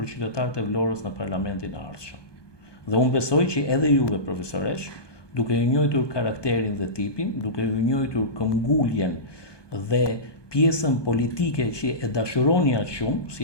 qytetarët e Vlorës në parlamentin e ardhshëm. Dhe unë besoj që edhe juve, profesoresh, duke ju njohur karakterin dhe tipin, duke ju njohur këmbguljen dhe pjesën politike që e dashuroni aq shumë,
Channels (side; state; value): right; late; 1.2 ms